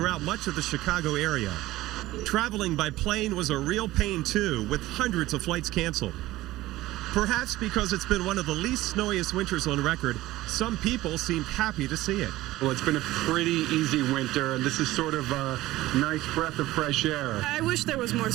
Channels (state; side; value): quieter; left; 16.9 dB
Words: much of the Chicago area. Traveling by plane was a real pain, too, with hundreds of flights canceled. Perhaps because it's been one of the least snowiest winters on record, some people seemed happy to see it. Well, it's been a pretty easy winter, and this is sort of a nice breath of fresh air. I wish there was more